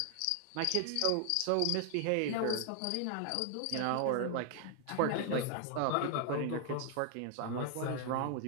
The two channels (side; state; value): both; different; correlation 0.00